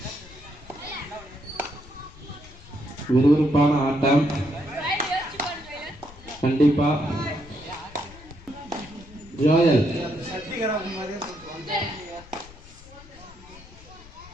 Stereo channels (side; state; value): left; noise; rumble, 20 dB below the sound